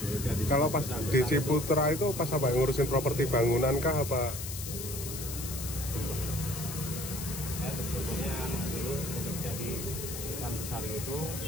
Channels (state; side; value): noise; left; hiss, 7 dB below the sound